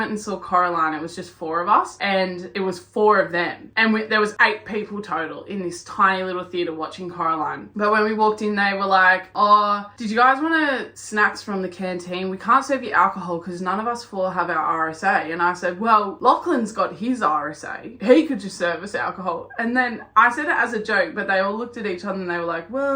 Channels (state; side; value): identical; both; correlation 1.00